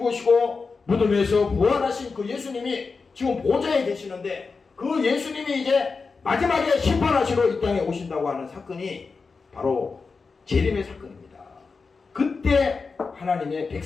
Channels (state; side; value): quieter; right; 4.6 dB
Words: 무덤에서 부활하신 그 예수님이 지금 보좌에 계시는데 그 예수님이 이제 마지막에 심판하시러 이 땅에 오신다고 하는 사건이 바로 재림의 사건입니다. 그때 하나님의